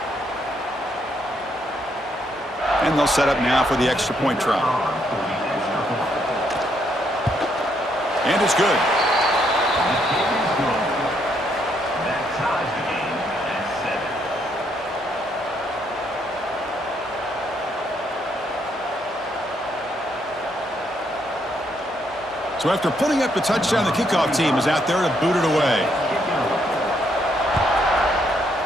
And they'll set up now for the extra point try. And it's good. So after putting up the touchdown, the kickoff team is out there to boot it away.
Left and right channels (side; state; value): both; normal; correlation 0.74